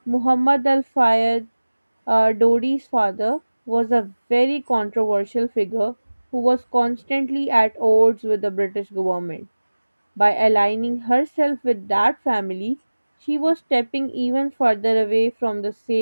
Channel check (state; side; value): inverted; both; correlation -1.00